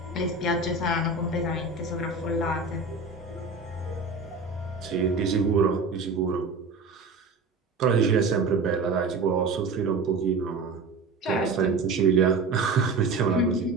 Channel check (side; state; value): left; quieter; 3.9 dB